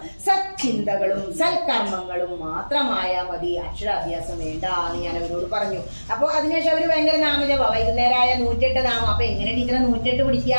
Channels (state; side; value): inverted; both; correlation -1.00